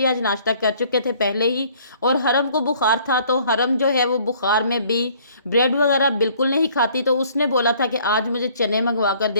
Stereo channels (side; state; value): both; inverted; correlation -0.58